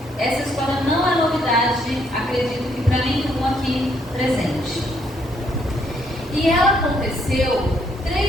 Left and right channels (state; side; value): normal; both; correlation 0.70